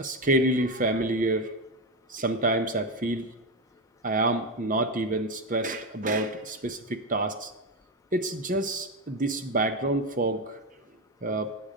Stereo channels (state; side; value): normal; both; correlation 0.13